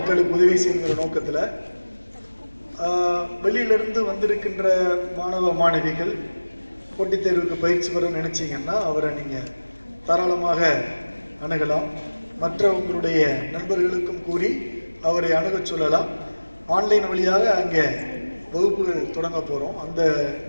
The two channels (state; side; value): inverted; both; correlation -1.00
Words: உதவி செய்கிற நோக்கத்தில் வெளியிலிருந்து வந்திருக்கின்ற மாணவ மாணவிகள் போட்டித் தேர்வுக்கு பயிற்சி பெற நினைச்சிங்கன்னா அவரை நீங்கள் தாராளமாக அணுகலாம். மற்ற உங்களுடைய நண்பர்களுக்கும் கூறி அவரை அணுகச் சொல்லலாம். ஆன்லைன் வழியாக அங்கே வகுப்புகள் தொடங்க போகிறோம், அந்த